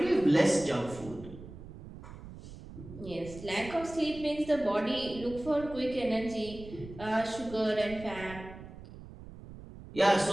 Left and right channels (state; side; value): noise; right; rumble, 15 dB below the sound